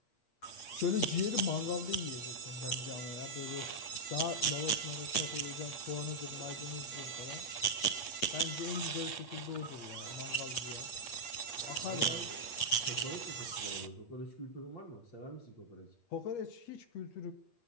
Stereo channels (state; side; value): late; right; 8.4 ms